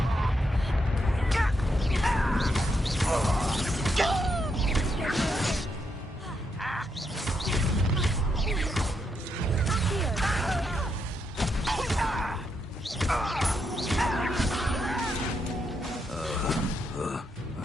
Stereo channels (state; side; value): normal; both; correlation 0.80